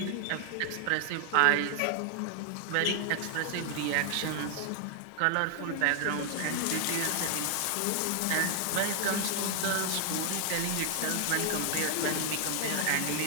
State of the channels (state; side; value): different; both; correlation 0.00